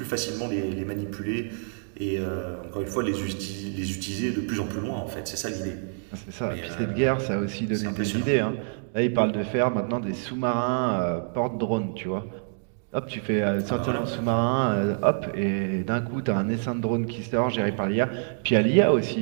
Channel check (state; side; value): silent; left; digital silence